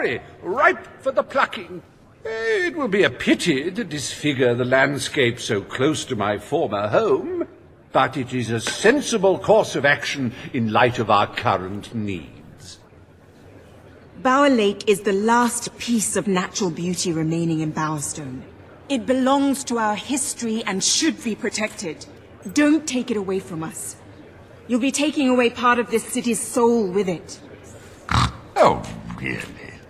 ripe for the plucking. It will be a pity to disfigure the landscape so close to my former home, but it is a sensible course of action in light of our current needs. Bower Lake is the last piece of natural beauty remaining in Bowerstone. It belongs to our history and should be protected. Don't take it away from us. You'll be taking away part of this city's soul with it. Oh, really?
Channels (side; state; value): both; identical; correlation 1.00